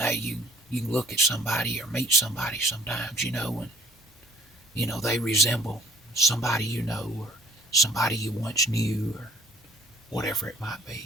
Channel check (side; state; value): both; normal; correlation 0.55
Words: you can look at somebody or meet somebody sometimes, and they resemble somebody you know or somebody you once knew or whatever it might